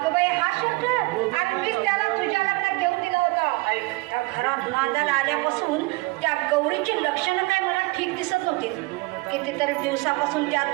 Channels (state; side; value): quieter; left; 23.8 dB